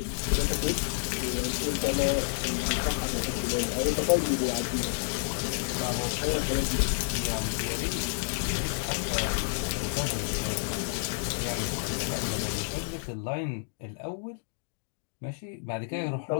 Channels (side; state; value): right; silent; digital silence